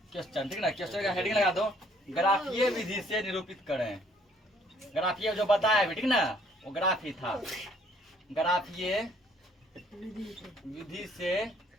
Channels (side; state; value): both; normal; correlation 0.63